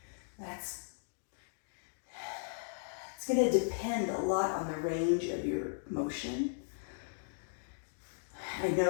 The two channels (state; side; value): silent; right; digital silence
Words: It's going to depend a lot on the range of your motion. I